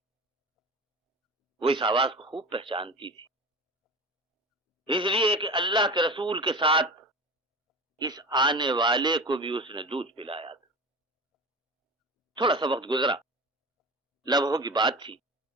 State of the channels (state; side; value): normal; both; correlation 0.32